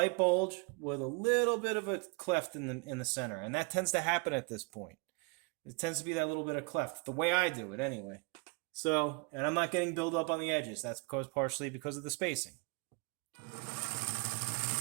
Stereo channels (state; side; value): quieter; left; 31.1 dB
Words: bulge with a little bit of a cleft in the center, and that tends to happen at this point. It tends to be that little bit of cleft, the way I do it anyway. So, and I'm not getting buildup on the edges. That's partially because of the spacing.